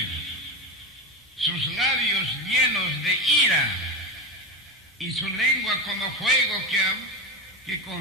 sus labios llenos de ira y su lengua como fuego que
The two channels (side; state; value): both; normal; correlation 0.17